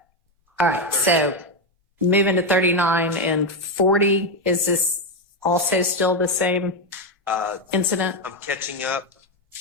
All right. So moving to 39 and 40, is this also still the same incident? I'm catching up.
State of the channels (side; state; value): both; normal; correlation 0.08